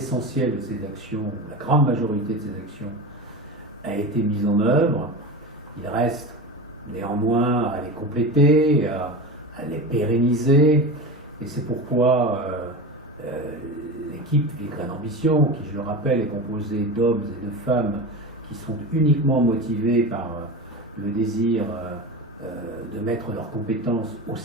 de ces actions, la grande majorité de ces actions, a été mise en œuvre. Il reste néanmoins à les compléter, à les pérenniser, et c'est pourquoi l'équipe Villecresnes Ambition, qui je le rappelle est composée d'hommes et de femmes qui sont uniquement motivés par le désir de mettre leurs compétences au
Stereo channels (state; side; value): normal; both; correlation 0.26